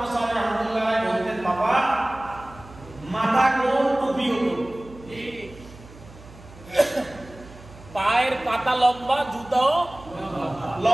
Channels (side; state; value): right; noise; hum, 20 dB below the sound